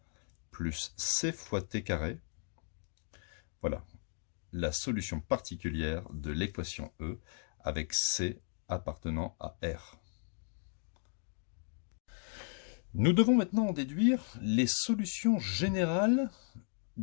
plus c fois t carré. Voilà, la solution particulière de l'équation E avec C appartenant à R. Nous devons maintenant en déduire les solutions générales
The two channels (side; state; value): right; silent; 54 dB below the other